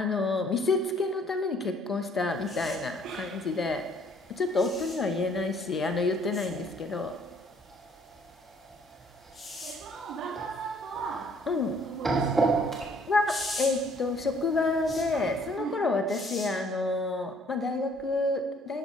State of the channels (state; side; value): normal; both; correlation 0.61